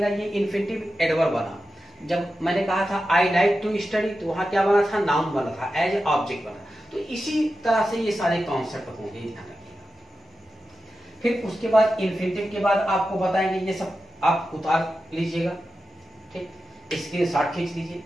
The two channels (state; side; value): normal; both; correlation 0.91